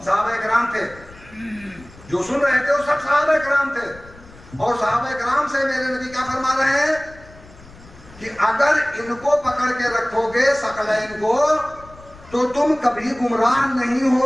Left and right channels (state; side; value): noise; left; rumble, 22 dB below the sound